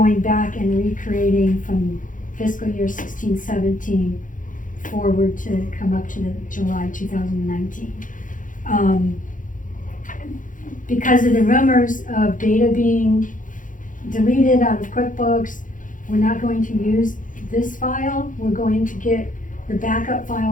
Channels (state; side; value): late; right; 0.38 ms